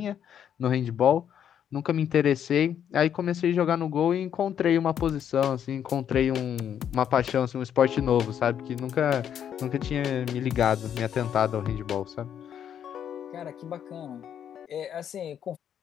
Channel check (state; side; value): quieter; right; 9.2 dB